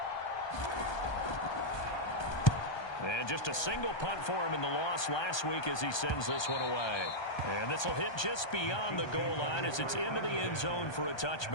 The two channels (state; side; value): late; right; 1.2 ms